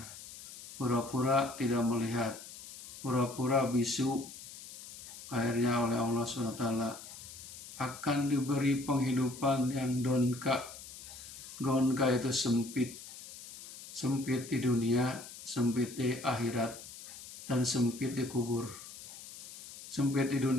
pura-pura tidak melihat, pura-pura bisu. Akhirnya oleh Allah SWT akan diberi penghidupan yang donka. Donka itu sempit, sempit di dunia, sempit di akhirat, dan sempit di kubur. Sempit di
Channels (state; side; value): noise; left; hiss, 14 dB below the sound